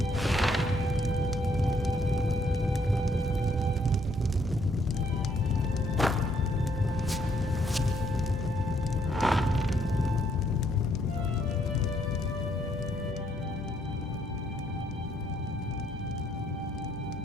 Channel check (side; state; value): both; normal; correlation 0.70